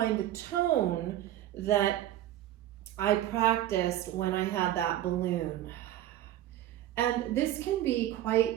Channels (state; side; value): quieter; left; 13.2 dB